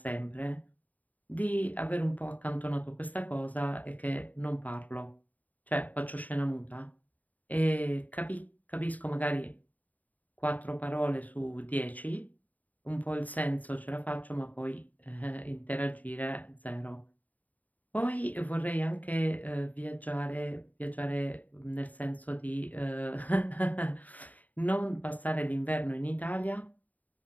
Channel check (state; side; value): late; right; 0.076 ms